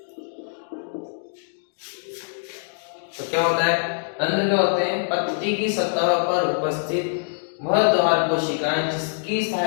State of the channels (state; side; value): silent; right; digital silence